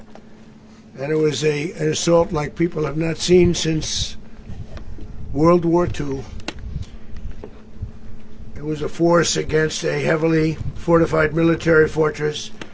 And it was an assault like people have not seen since World War II. It was a force against a heavily fortified military fortress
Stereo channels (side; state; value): both; identical; correlation 1.00